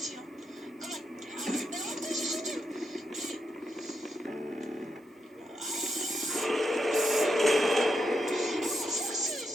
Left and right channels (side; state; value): both; normal; correlation 0.83